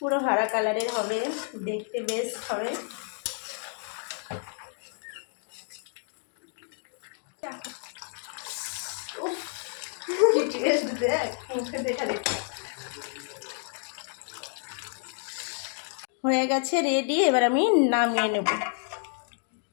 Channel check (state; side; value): silent; right; 58 dB below the other